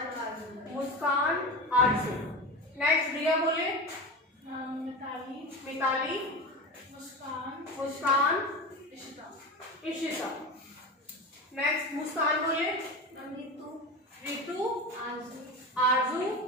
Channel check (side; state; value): both; normal; correlation 0.25